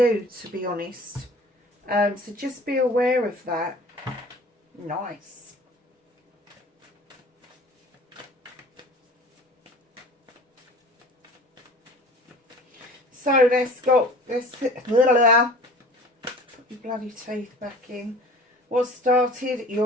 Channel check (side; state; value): both; normal; correlation 0.44